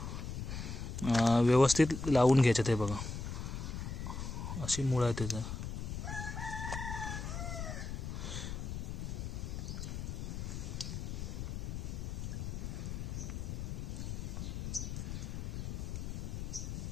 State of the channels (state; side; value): noise; left; rumble, 4 dB below the sound